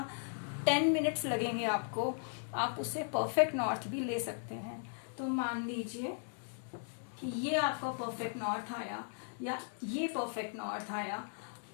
10 मिनट्स लगेंगे आपको। आप उससे परफेक्ट नॉर्थ भी ले सकते हैं। तो मान लीजिए कि ये आपका परफेक्ट नॉर्थ आया, या ये परफेक्ट नॉर्थ आया,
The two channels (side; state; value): right; silent; digital silence